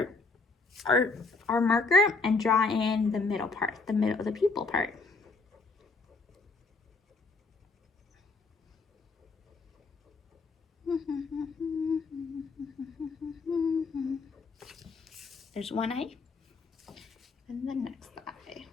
marker and draw in the middle part, the pupil part. There's one eye, and the next eye.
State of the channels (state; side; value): quieter; right; 3.8 dB